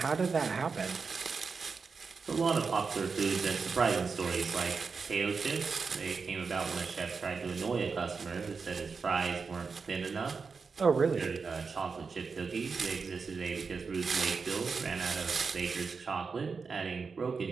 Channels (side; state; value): left; quieter; 5.0 dB